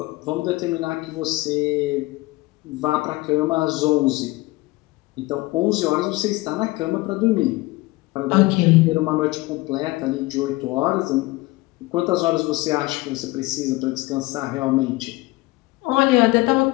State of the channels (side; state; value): right; quieter; 21.3 dB